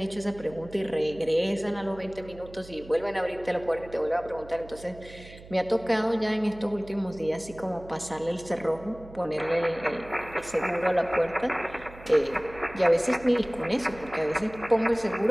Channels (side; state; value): right; noise; hum, 18 dB below the sound